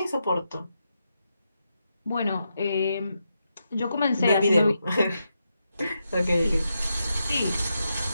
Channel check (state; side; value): inverted; both; correlation -0.85